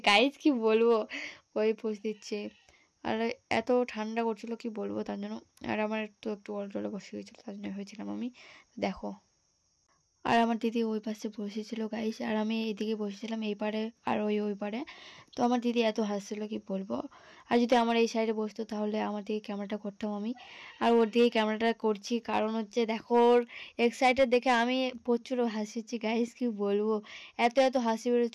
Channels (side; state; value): both; identical; correlation 1.00